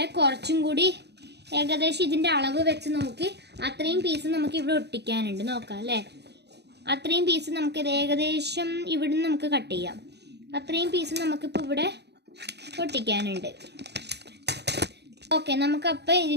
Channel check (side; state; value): left; late; 0.49 ms